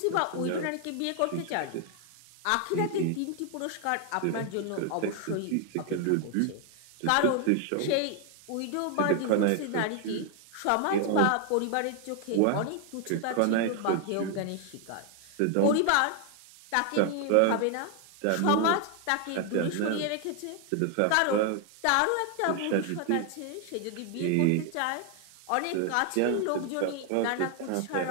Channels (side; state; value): both; different; correlation 0.00